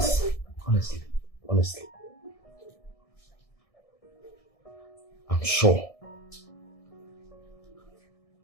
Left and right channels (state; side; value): late; right; 1.6 ms